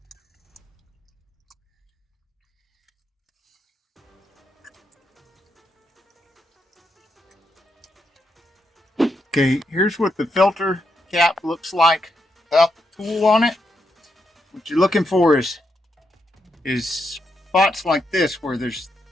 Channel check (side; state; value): both; normal; correlation 0.81